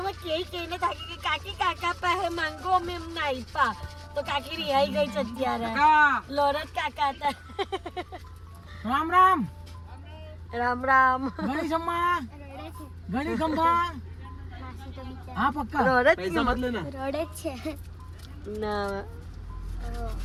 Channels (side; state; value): both; identical; correlation 1.00